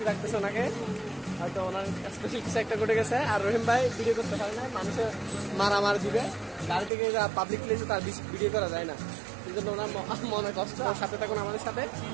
লাগতেছে ওনাকে, হয়তো ওনার স্পেশাল কিছু একটা ঘটে গেছে। আর রহিম ভাই ভিডিও করতে পারে না, মানুষের মারামার দিবে, গাড়ি থেকে পাবলিক প্লেসে তার ভিডিও করা যায় না, এই জন্য ওনার মনে কষ্ট। সাথে থাকুন আমাদের সাথে,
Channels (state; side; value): drops out; left; at 6.9 s